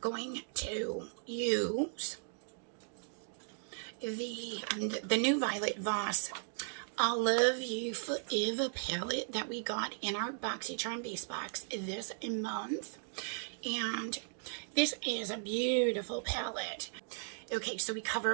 going to use the new Violet Voss I Love You Forever palette that we got in our Boxycharm base box this month. And this is a beautiful palette. Okay, so we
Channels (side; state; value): left; silent; digital silence